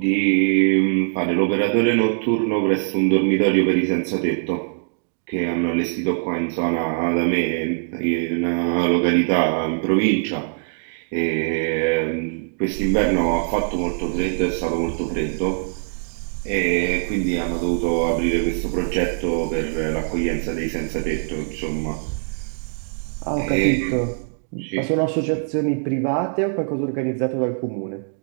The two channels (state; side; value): silent; left; digital silence